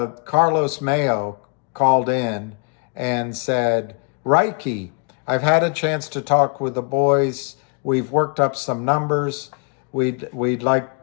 Mayo called in and said, Reiki, I've had a chance to talk with the boys. We've worked up some numbers. We'd like,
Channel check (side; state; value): right; quieter; 38.6 dB